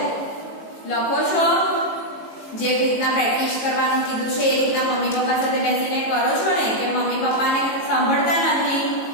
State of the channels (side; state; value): right; late; 18 ms